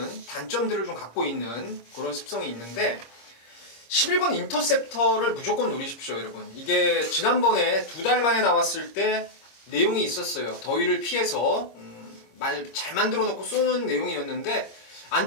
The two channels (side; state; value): right; late; 26 ms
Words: 단점들을 좀 갖고 있는 그런 습성이 있는데, 11번 인터셉터를 무조건 노리십시오, 여러분. 이게 지난번에 2달 만에 나왔을 때 내용이 있었어요. 더위를 피해서 말 잘 만들어 놓고 쏘는 내용이었는데,